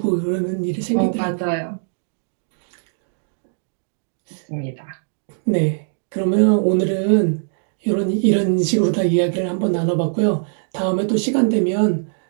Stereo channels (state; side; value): silent; left; digital silence